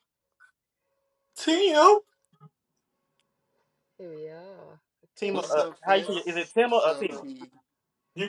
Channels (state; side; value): identical; both; correlation 1.00